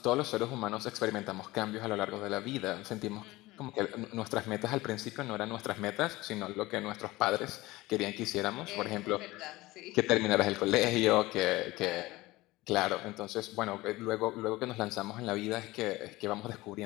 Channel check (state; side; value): quieter; right; 19.5 dB